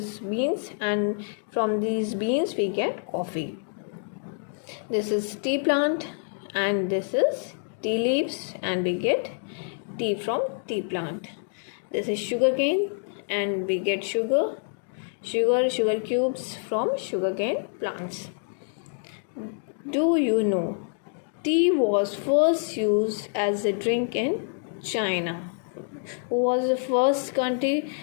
beans, and from these beans we get coffee. This is tea plant, and this is tea leaves, and we get tea from tea plant. This is sugar cane, and we get sugar cubes from sugarcane plants. Do you know tea was first used as a drink in China? Who was the first country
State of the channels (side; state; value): right; silent; 60 dB below the other